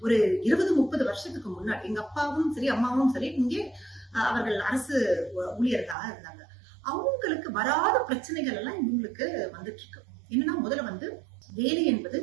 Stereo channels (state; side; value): drops out; left; at 6.0 s